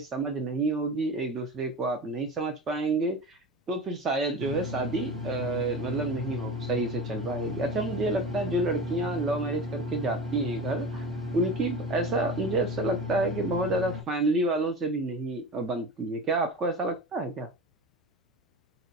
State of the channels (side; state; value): both; normal; correlation 0.31